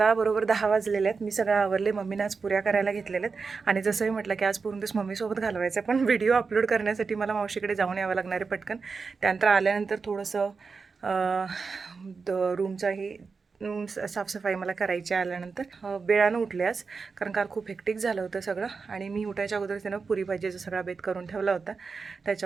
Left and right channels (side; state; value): left; quieter; 4.8 dB